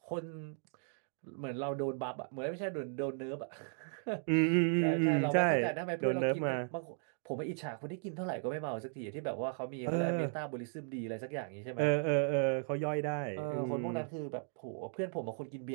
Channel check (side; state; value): left; silent; 54 dB below the other